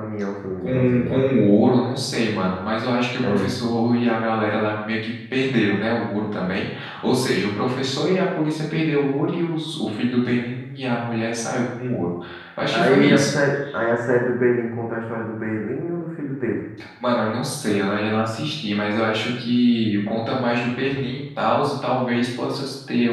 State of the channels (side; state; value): both; identical; correlation 1.00